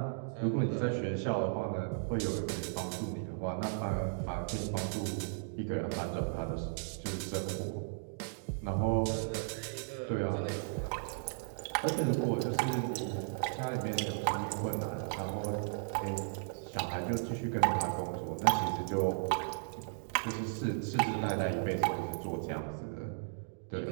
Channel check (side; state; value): left; silent; digital silence